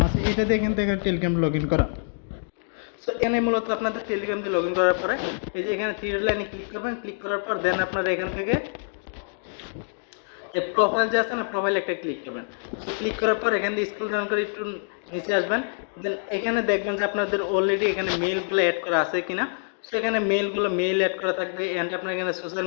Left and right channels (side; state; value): right; silent; digital silence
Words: আছে, এটা দিয়ে কিন্তু এখানে টেলিগ্রাম লগ ইন করা। সো এখানে মূলত আপনাদের টেলিগ্রাম দিয়ে লগ ইন করার পরে এই যে এখানে থ্রি লাইনে ক্লিক করবেন, ক্লিক করার পর দেন আপনারা এখান থেকে যে প্রোফাইল যে আছে না, প্রোফাইল একটা ক্লিক করবেন। সো ক্লিক করার পর এখান থেকে স্ক্রল ডাউন করে একটু নিচে আসবেন। দেন এখানে দেখবেন যে আপনাদের অলরেডি এখানে মেইলগুলো অ্যাড করা আছে কিনা। সো এখানে মেইল অ্যাড করা থাকবে, অ্যান্ড আপনার এখানে সোশ্যাল